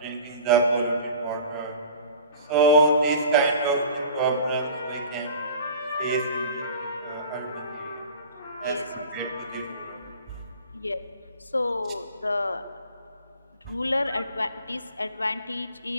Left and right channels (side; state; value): both; inverted; correlation -0.43